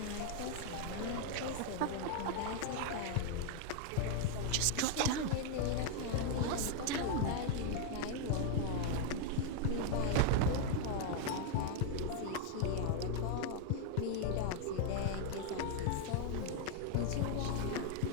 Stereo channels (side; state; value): both; different; correlation 0.01